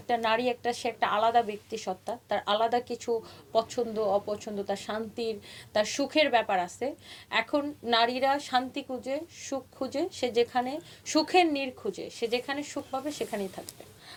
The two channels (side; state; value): both; identical; correlation 1.00